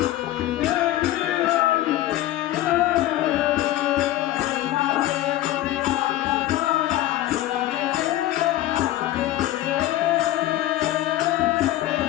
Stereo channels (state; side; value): quieter; right; 14.7 dB